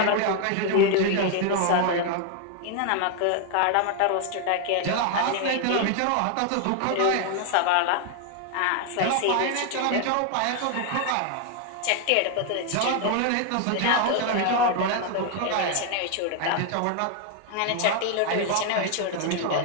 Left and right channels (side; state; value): both; different; correlation 0.00